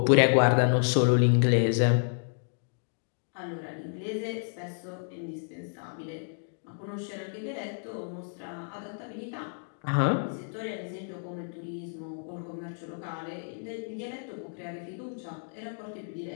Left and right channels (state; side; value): silent; right; digital silence